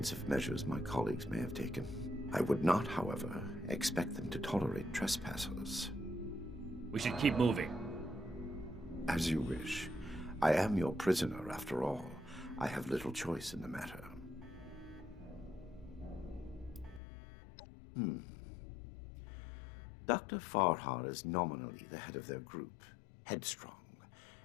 measures my colleagues may have taken. I would not, however, expect them to tolerate trespassers. We should keep moving. As you wish. I am your prisoner, after all. I have little choice in the matter. Dr. Farhar is nominally the head of their group, Headstrong,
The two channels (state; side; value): drops out; right; at 17.0 s